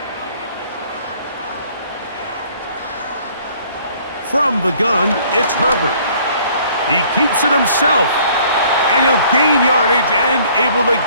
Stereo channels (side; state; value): both; inverted; correlation -0.57